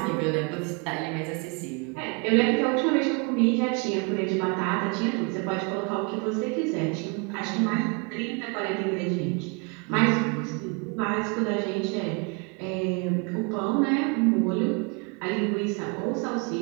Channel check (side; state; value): left; quieter; 32.7 dB